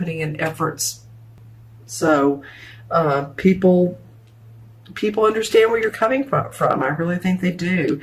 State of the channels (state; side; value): identical; both; correlation 1.00